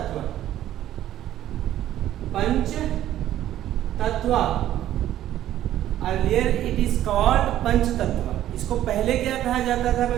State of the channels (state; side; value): quieter; left; 12.6 dB